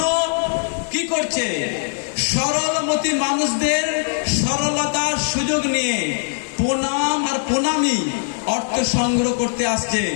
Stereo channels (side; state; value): right; silent; digital silence